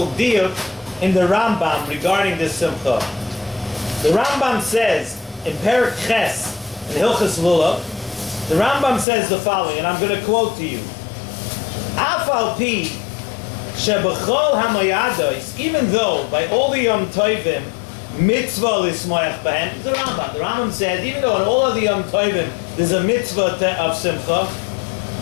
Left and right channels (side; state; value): right; drops out; at 9.1 s